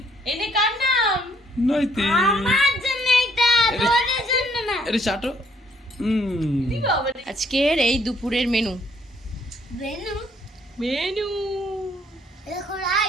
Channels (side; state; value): both; normal; correlation 0.66